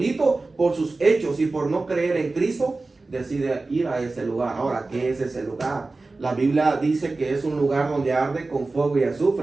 por sus hechos y por no creer en Cristo decide ir a ese lugar. Ahora, ¿qué es ese lugar? La Biblia dice que es un lugar donde arde con fuego y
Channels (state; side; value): quieter; left; 3.5 dB